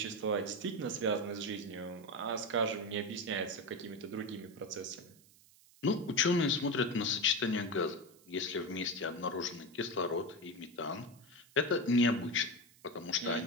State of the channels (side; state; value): right; noise; hiss, 26 dB below the sound